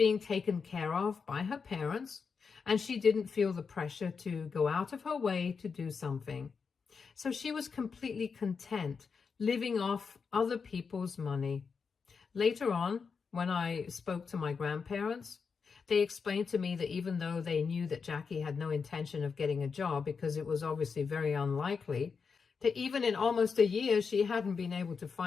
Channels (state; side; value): quieter; right; 5.5 dB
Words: taken care of by her parents and she didn't feel the pressure to go out of her way to do something. So she was completely content living off other people's money. Later on, when I spoke to my grandparents, they explained to me that even though they knew that Jackie had no intention of getting a job because it was obviously very unlikely, that even in almost a year she hadn't been able to